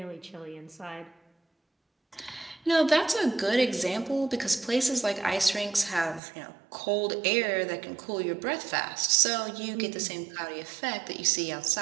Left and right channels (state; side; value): drops out; left; at 6.2 s